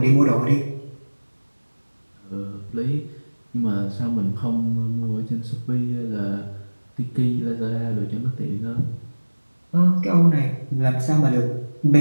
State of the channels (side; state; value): both; inverted; correlation -1.00